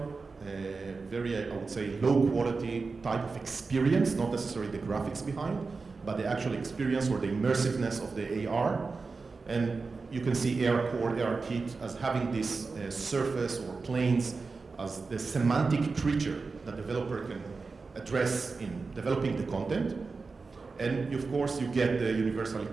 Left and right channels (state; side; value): quieter; left; 4.3 dB